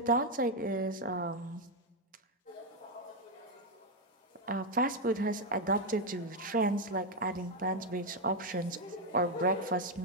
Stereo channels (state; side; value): normal; both; correlation 0.02